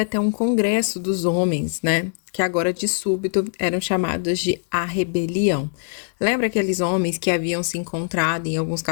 um congresso dos homens, né? Que agora de súbito eram chamados de A Rebelião. Lembra aqueles homens que haviam se encontrado em alguns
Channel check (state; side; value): silent; right; digital silence